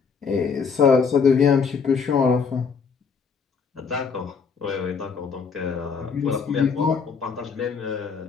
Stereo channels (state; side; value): quieter; right; 5.7 dB